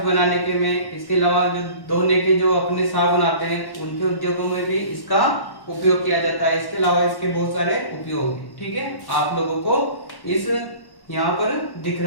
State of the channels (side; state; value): right; late; 1.1 ms